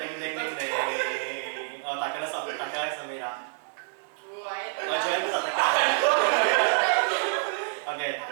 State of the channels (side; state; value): left; silent; digital silence